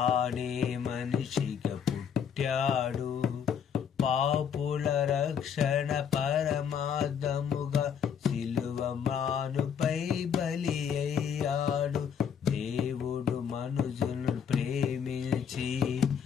మనిషిగా పుట్టాడు, పాపుల రక్షణ పరమార్థముగా సిలువ మానుపై బలి అయ్యాడు. దేవుడు మనుజులను ప్రేమించి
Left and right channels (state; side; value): quieter; right; 7.6 dB